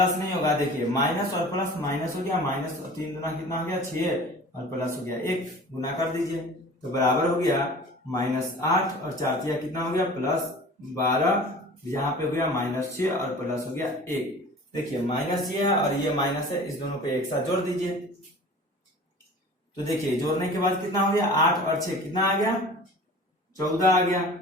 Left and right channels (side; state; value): both; normal; correlation 0.42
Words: नहीं होगा, देखिए माइनस और प्लस माइनस हो गया, माइनस और 3 गुना कितना हो गया 6 और प्लस हो गया 1, गुना कर दीजिए तो बराबर हो गया -8 और 4 कितना हो गया +12, यहाँ पे हो गया -6 और प्लस हो गया 1। देखिए माइनस ये है और ये माइनस है, इस दोनों को एक साथ जोड़ दीजिए। तो देखिए जोड़ने के बाद कितना हो गया 8 और 6 कितना आ गया 14 आ गया